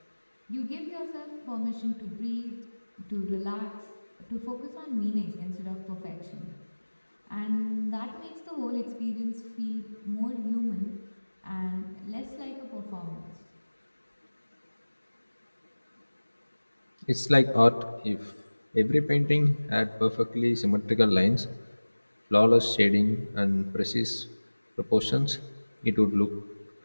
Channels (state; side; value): inverted; both; correlation -1.00